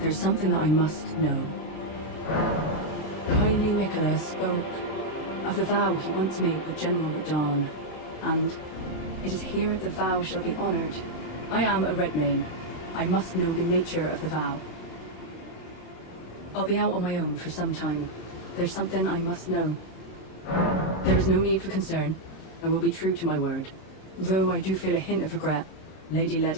something that I must know. Kindly Miquella spoke of the vow he once made with General Radahn, and it is here the vow shall be honored. I am a Redmane. I must know the nature of the vow. I'll be out on my own for some time. There's something I must know. There is no need for concern. I will be true to my word. Though I do feel a hint of regret. Lady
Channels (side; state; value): right; late; 26 ms